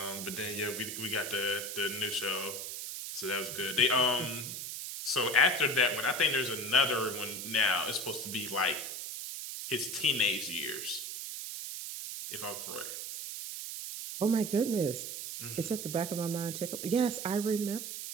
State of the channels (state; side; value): noise; right; hiss, 6 dB below the sound